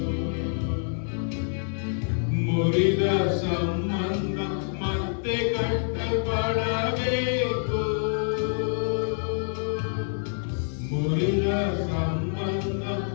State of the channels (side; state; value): right; silent; digital silence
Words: ಮುರಿದ ಸಂಬಂಧ ಮತ್ತೆ ಕಟ್ಟಲ್ಪಡಬೇಕು. ಮುರಿದ ಸಂಬಂಧ